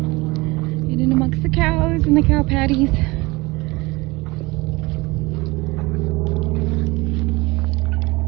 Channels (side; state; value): left; quieter; 23.1 dB